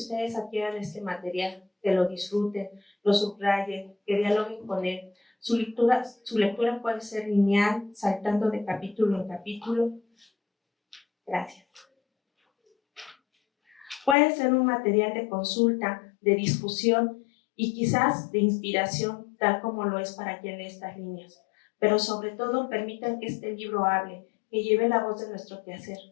adquieran este material, que lo disfruten, lo subrayen, que dialoguen con él. Su lectura puede ser lineal, saltando de capítulo en capítulo. Gracias. Puede ser un material de consulta, de discusión y quizás de inspiración, tal como lo es para quien lee estas líneas. Pero sobre todo, permitan que este libro hable, que lleve la voz de nuestro quehacer.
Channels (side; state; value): right; drops out; at 14.2 s